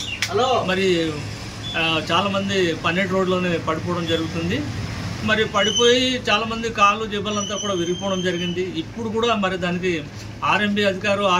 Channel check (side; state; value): both; identical; correlation 1.00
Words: మరి చాలామంది పన్నెట్ రోడ్లోనే పడిపోవడం జరుగుతుంది. మరి పడిపోయి చాలామంది కాళ్ళు జబ్బలంతా కూడా విరిగిపోవడం జరిగింది. ఇప్పుడు కూడా మరి దానికి ఆర్ఎంబీ అధికారు ఆ